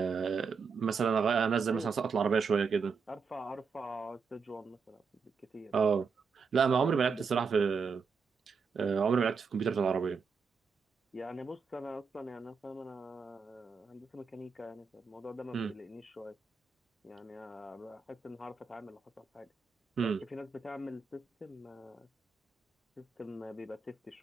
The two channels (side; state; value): left; quieter; 5.3 dB